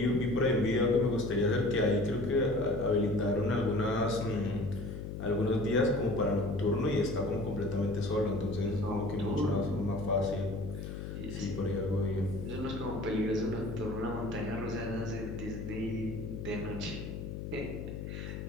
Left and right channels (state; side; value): noise; left; hum, 7 dB below the sound